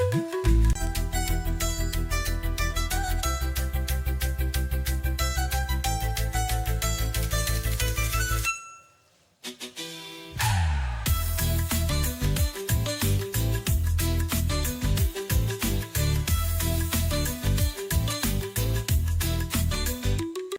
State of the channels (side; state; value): both; identical; correlation 1.00